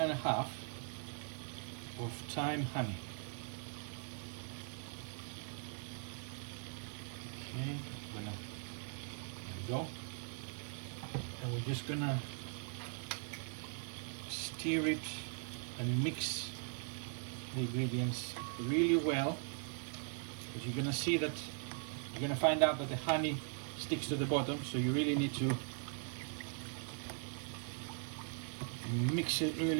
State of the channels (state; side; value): silent; left; 51 dB below the other